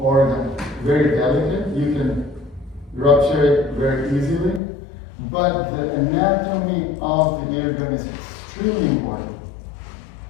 very delicate. You can rupture it very easily, but the anatomy of the eardrum is extremely important.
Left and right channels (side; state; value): right; drops out; at 4.6 s